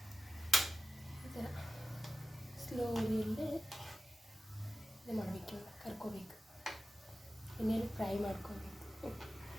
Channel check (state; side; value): normal; both; correlation 0.93